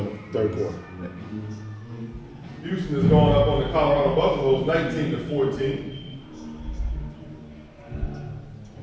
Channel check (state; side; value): identical; both; correlation 1.00